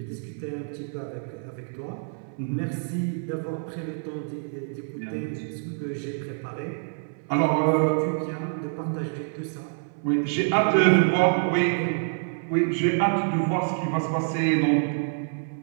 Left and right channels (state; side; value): silent; left; 60 dB below the other